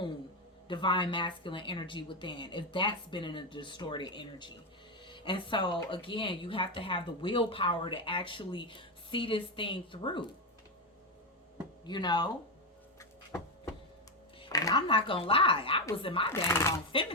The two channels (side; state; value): both; normal; correlation 0.10